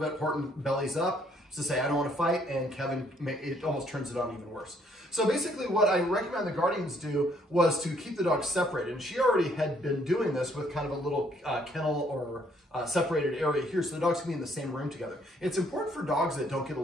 Horton bellies up to say, I don't want to fight, and Kevin, it almost turns it on even worse. So basically what I recommend the guardians do was to keep the dogs separated. And she already had been doing this with kind of a little kennel or separated area here, so the dogs can be in the same room together. It's important for dogs that don't get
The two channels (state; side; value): normal; both; correlation 0.66